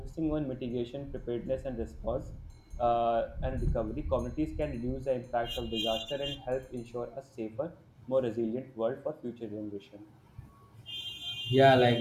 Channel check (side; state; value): both; identical; correlation 1.00